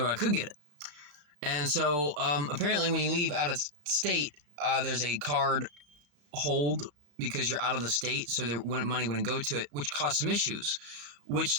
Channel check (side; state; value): left; late; 34 ms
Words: I could get it. And so apparently when you leave out of state, there's a card hold because you're out of the state, so money wouldn't go to it, which caused some issues,